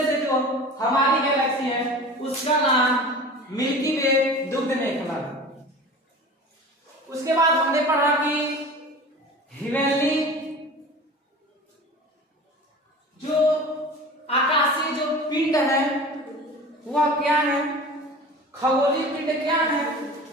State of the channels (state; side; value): normal; both; correlation 0.37